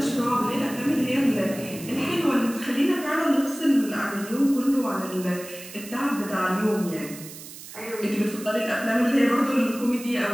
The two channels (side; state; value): right; noise; hiss, 14 dB below the sound